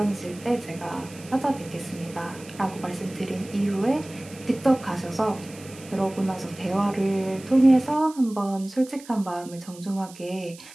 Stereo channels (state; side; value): noise; right; hiss, 19 dB below the sound